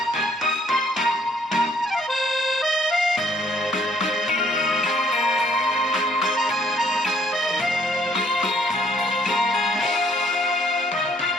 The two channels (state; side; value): normal; both; correlation 0.64